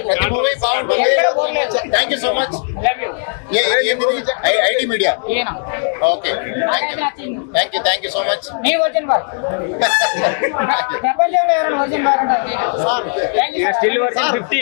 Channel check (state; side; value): silent; right; 62 dB below the other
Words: ప్రతి మూవీ బాగుంటుంది. Thank you so much. ఏంటిది IT media? Okay thank you so much.